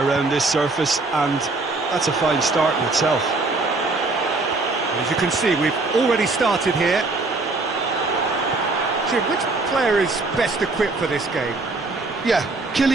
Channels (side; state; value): left; quieter; 3.4 dB